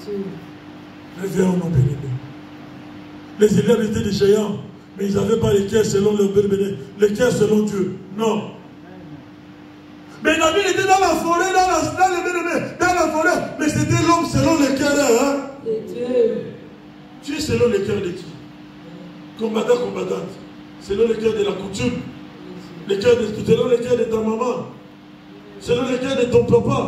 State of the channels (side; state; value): both; identical; correlation 1.00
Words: Réveillons nos bénédicts. Les élèves étaient des géants, mais ils n'avaient pas les cœurs selon leur bénédicts, les cœurs selon Dieu. Non. Mais David était dans la forêt, dans la forêt, mais c'était l'homme selon le cœur. Hein? Tu es selon le cœur de qui? Combattant, combattante. Selon le cœur de la coutume. Selon le cœur de ta maman. Selon le cœur de ton